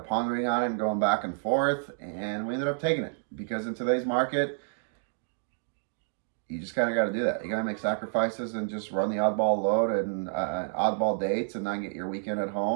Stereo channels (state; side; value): silent; left; digital silence